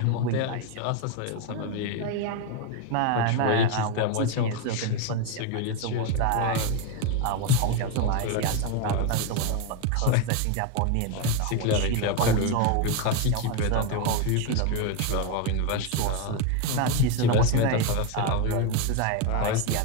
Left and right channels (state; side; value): different; both; correlation 0.02